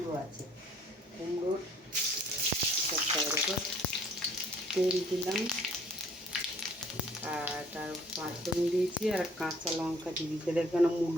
আছে, কুমড়ো দেখো তেল দিলাম, আর তার পাঁচফোড়ন দিয়েছি, আর কাঁচা লঙ্কা দিয়ে দিতে। এখানে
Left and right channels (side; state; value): both; normal; correlation 0.58